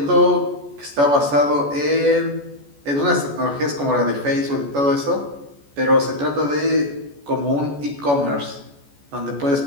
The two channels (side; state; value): left; late; 14 ms